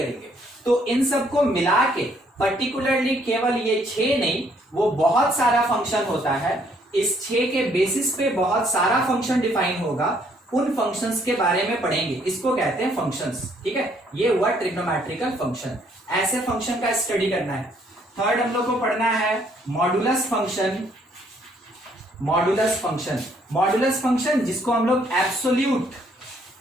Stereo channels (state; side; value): normal; both; correlation 0.66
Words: तो इन सबको मिला के पर्टिकुलरली केवल ये 6 नहीं, वो बहुत सारा फंक्शन होता है। इस 6 के बेसिस पे बहुत सारा फंक्शन डिफाइन होगा। उन फंक्शंस के बारे में पढ़ेंगे, इसको कहते हैं फंक्शंस। ठीक है, ये हुआ ट्रिग्नोमेट्रिकल फंक्शन। ऐसे फंक्शन का स्टडी करना है। थर्ड हम लोग को पढ़ना है modulus function. Modulus function, modulus function जिसको हम लोग एब्सोल्यूट